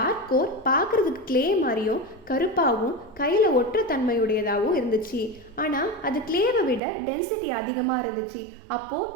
கோர் பார்க்குறதுக்கு கிளே மாதிரியும் கருப்பாகவும் கையில் ஒற்ற தன்மையுடையதாகவும் இருந்துச்சு. ஆனால் அது கிளேவை விட டென்சிட்டி அதிகமாக இருந்துச்சு. அப்போது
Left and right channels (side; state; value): left; drops out; at 6.8 s